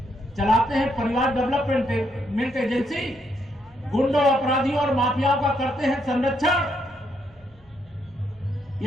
चलाते हैं परिवार डेवलपमेंट एजेंसी, गुंडों, अपराधियों और माफियाओं का करते हैं संरक्षण।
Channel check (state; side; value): noise; right; hum, 29 dB below the sound